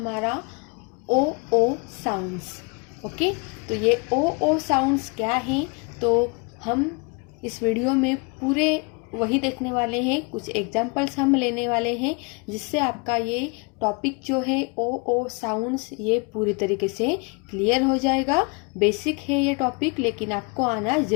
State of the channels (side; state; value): right; quieter; 31.9 dB